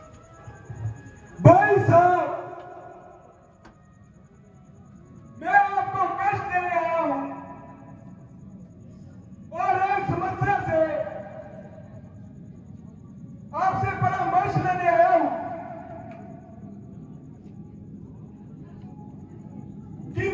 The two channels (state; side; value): identical; both; correlation 1.00